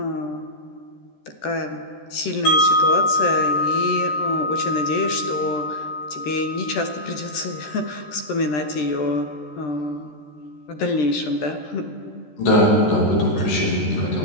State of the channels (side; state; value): right; late; 13 ms